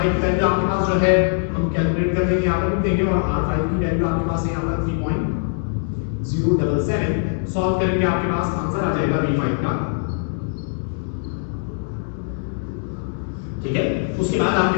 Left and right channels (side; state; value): right; silent; digital silence